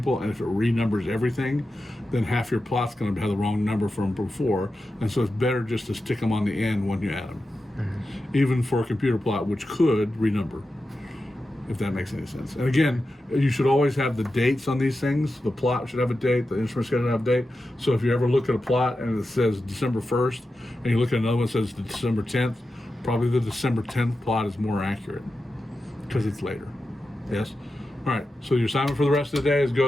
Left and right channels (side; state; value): both; normal; correlation 0.91